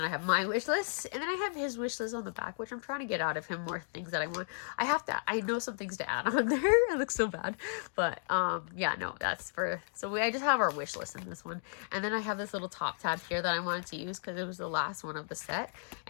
I have my wish list, and then I have his wish list on the back, which I'm trying to get out of him more things that I want. I know some things to add on there. It looks so bad, but yeah, no, that's for, so I just have our wish list in this one. And then I have this little top tab here that I wanted to use because it was the last one of the set,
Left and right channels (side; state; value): right; silent; digital silence